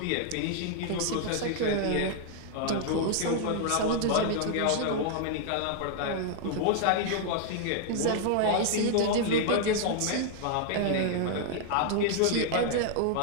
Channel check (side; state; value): both; different; correlation -0.01